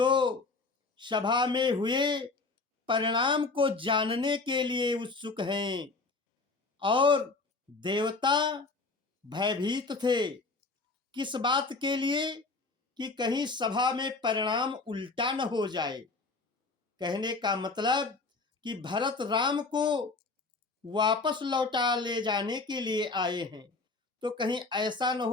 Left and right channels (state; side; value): quieter; right; 3.8 dB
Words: सभा में हुए परिणाम को जानने के लिए उत्सुक हैं। और देवता भयभीत थे, किस बात के लिए कि कहीं सभा में परिणाम उल्टा न हो जाए। कहने का मतलब कि भरत राम को वापस लौटा ले जाने के लिए आए हैं, तो कहीं ऐसा न